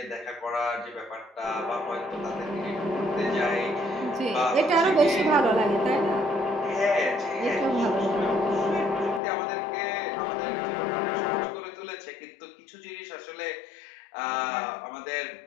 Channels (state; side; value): drops out; right; at 9.2 s